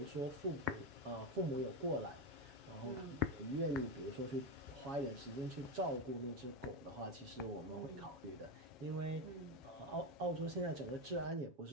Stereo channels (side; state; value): left; late; 7.2 ms